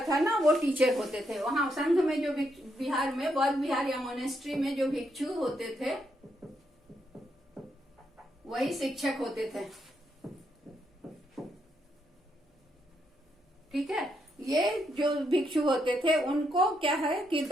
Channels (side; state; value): both; normal; correlation 0.78